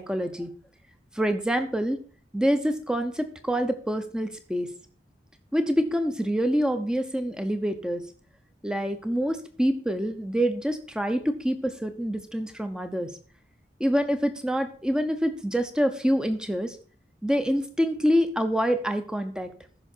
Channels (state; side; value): normal; both; correlation 0.92